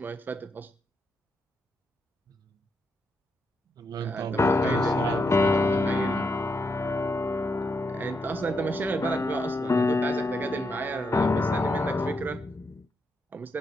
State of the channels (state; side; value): normal; both; correlation 0.80